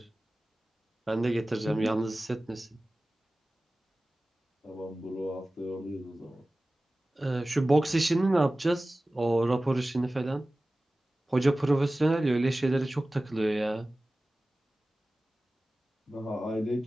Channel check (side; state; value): both; normal; correlation 0.97